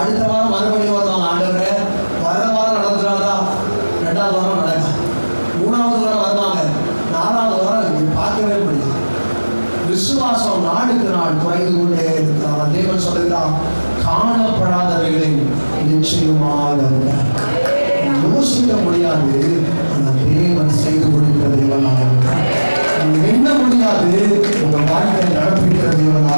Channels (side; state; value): both; inverted; correlation -1.00